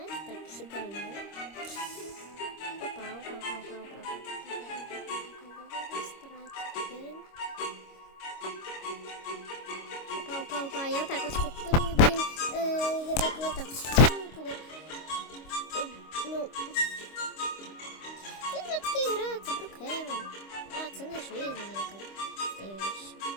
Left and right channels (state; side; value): late; right; 25 ms